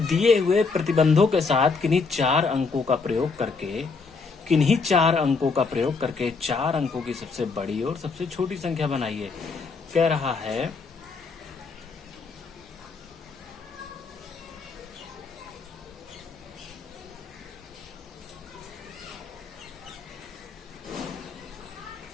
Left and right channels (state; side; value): quieter; right; 4.5 dB